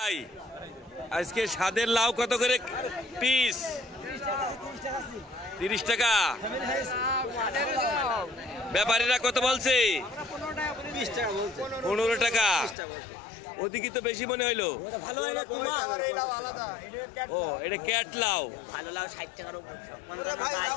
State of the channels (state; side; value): drops out; right; at 12.8 s